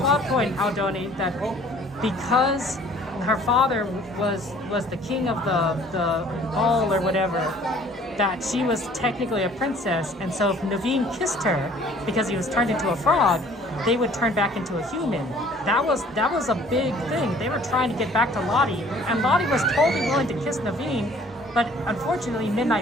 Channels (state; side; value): normal; both; correlation 0.54